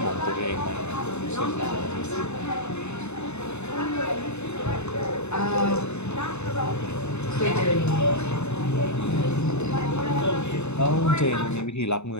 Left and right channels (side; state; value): right; late; 0.81 ms